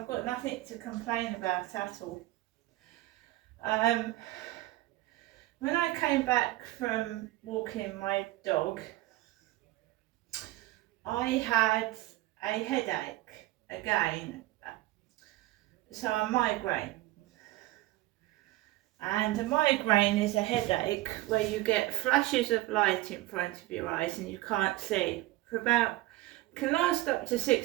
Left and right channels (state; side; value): quieter; left; 17.9 dB